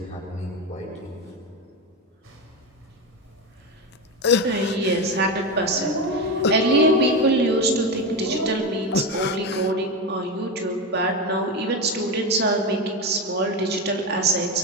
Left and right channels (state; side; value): normal; both; correlation 0.16